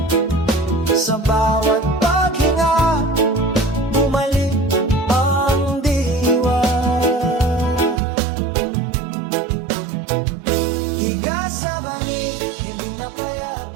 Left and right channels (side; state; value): left; drops out; at 8.0 s